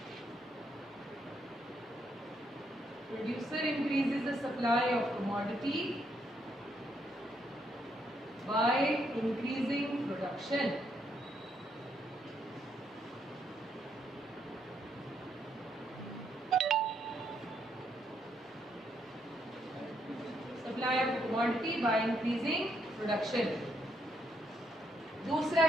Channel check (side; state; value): both; normal; correlation 0.75